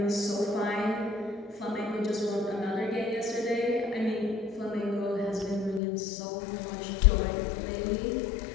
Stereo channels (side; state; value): right; drops out; at 5.8 s